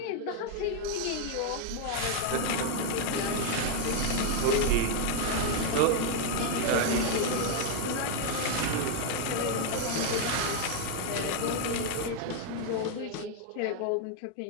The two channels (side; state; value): both; different; correlation 0.00